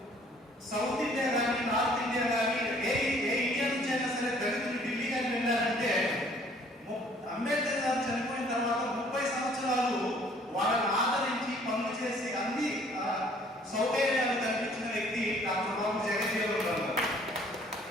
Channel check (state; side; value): normal; both; correlation 0.58